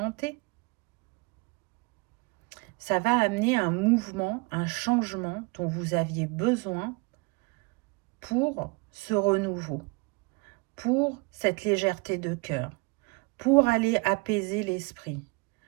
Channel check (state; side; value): quieter; left; 28.5 dB